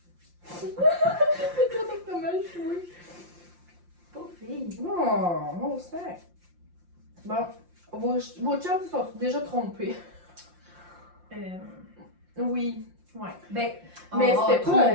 Le crotte au fromage, oui. Pauvre fille. Oh, mon sac. Bon, vos chums se sont déjà trompés. Oui. Ouais. Ben, Mais on c'était a pas,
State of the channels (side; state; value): left; late; 5.7 ms